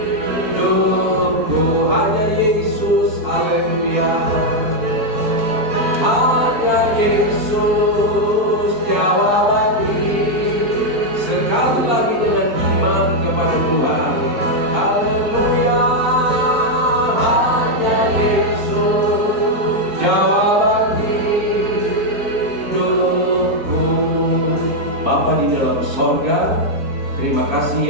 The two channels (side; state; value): left; late; 4.5 ms